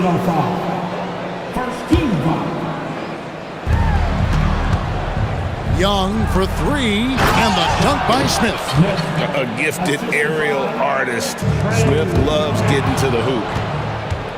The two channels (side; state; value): both; identical; correlation 1.00